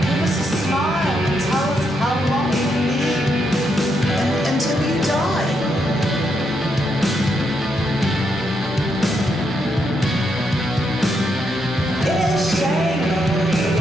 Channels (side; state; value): both; normal; correlation 0.79